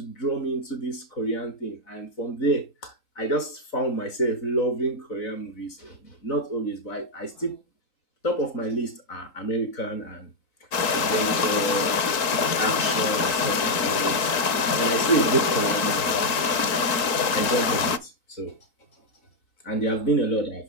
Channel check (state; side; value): late; right; 3.8 ms